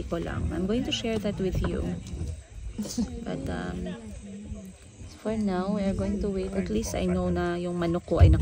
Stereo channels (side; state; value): both; identical; correlation 1.00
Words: ko lang. I'm going to share that with you. But for now, we are going to wait. At least I know na yung manok ko ay